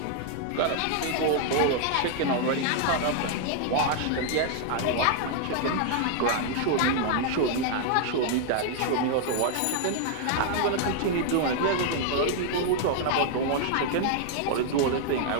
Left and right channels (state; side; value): different; both; correlation 0.00